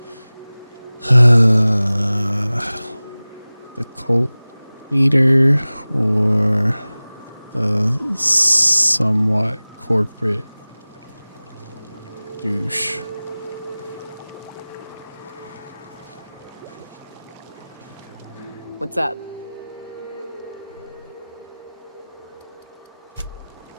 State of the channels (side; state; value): both; inverted; correlation -0.99